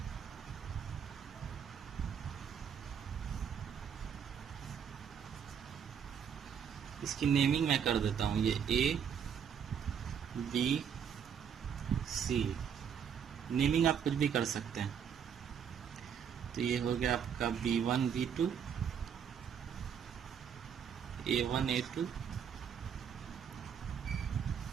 इसकी नेमिंग मैं कर देता हूं, ये ए बी सी। नेमिंग आप कुछ भी कर सकते हैं। तो ये हो गया आपका B1 B2, A1 A2,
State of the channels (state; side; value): quieter; left; 7.9 dB